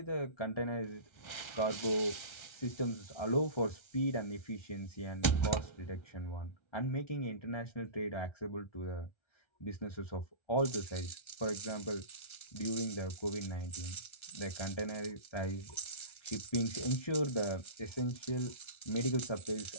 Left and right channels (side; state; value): right; late; 1.3 ms